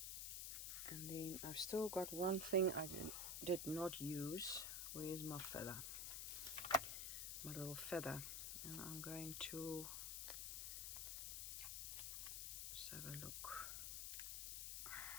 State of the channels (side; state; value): left; noise; hiss, 2 dB below the sound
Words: And then I've still got one thing I did not use. Where's my feather? My little feather. And I'm going to just have a look.